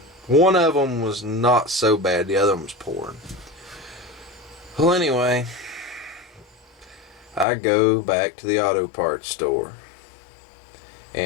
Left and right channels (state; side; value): drops out; right; at 7.5 s